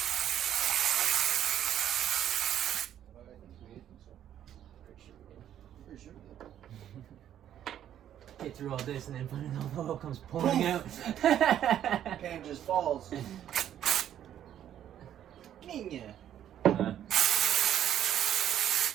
Get through all this and then finally all the oil comes pouring out. Pan just falls. Niña.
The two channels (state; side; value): quieter; left; 10.7 dB